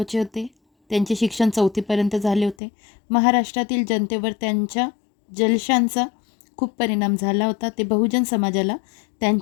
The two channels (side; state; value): right; drops out; at 2.6 s